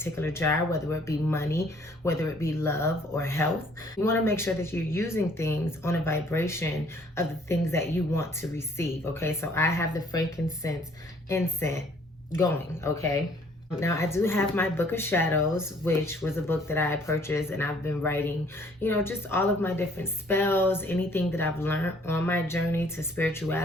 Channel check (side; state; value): both; normal; correlation 0.60